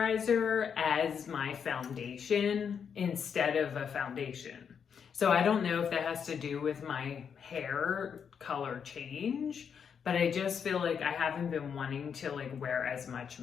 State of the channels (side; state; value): right; quieter; 7.1 dB